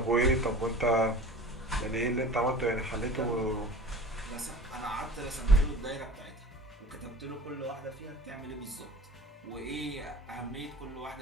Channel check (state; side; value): normal; both; correlation 0.42